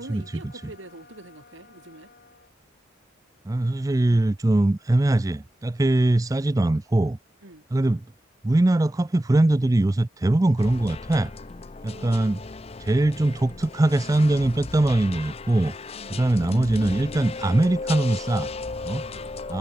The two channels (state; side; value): normal; both; correlation 0.93